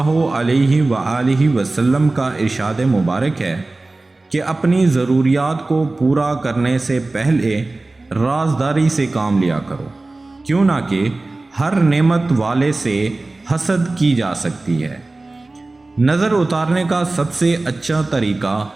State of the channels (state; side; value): quieter; left; 3.1 dB